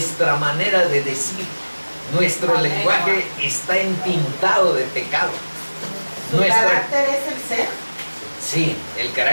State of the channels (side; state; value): both; inverted; correlation -1.00